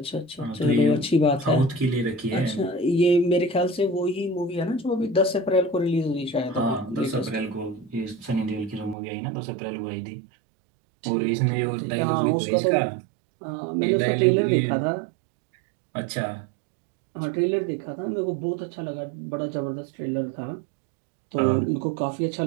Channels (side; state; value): left; drops out; at 9.0 s